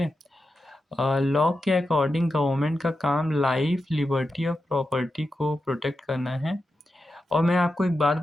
लॉ के अकॉर्डिंग गवर्नमेंट का काम लाइफ, लिबर्टी और प्रॉपर्टी को प्रोटेक्ट करना है। और मैं आपको एक बात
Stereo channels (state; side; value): normal; both; correlation 0.89